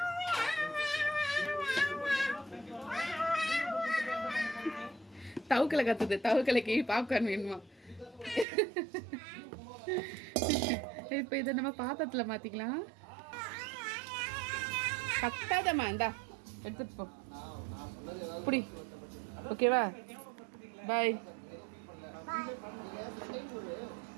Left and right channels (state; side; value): drops out; left; at 8.5 s